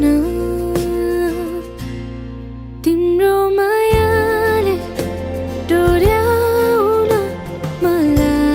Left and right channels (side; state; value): both; identical; correlation 1.00